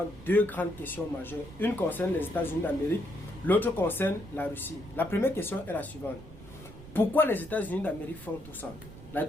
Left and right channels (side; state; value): right; noise; rumble, 17 dB below the sound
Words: deux grandes questions majeures. Une concerne les États-Unis d'Amérique, l'autre concerne la Russie. La première question est la suivante. Pourquoi les États-Unis d'Amérique font tout ça? La